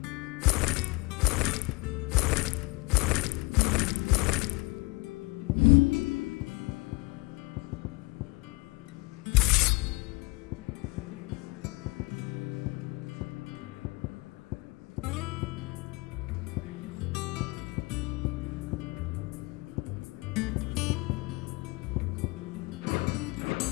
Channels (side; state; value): right; quieter; 25.1 dB